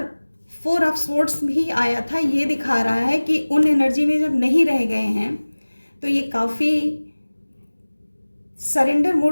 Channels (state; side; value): inverted; both; correlation -1.00